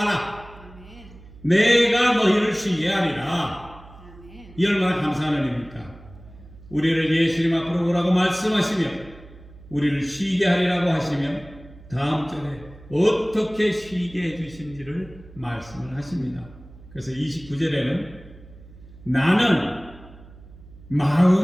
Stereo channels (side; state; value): right; noise; hum, 20 dB below the sound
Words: 내가 너희를 쉬게 하리라. 이 얼마나 감사한 은혜입니까? 우리를 예수님 앞으로 오라고 말씀하시며 우리를 쉬게 하리라고 하시며 다음 절에 어떻게 쉬게 해주신지를 말씀을 하십니다. 그래서 29절에는 나는